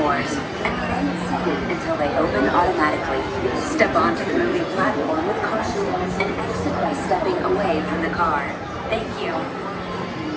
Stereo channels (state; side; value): identical; both; correlation 1.00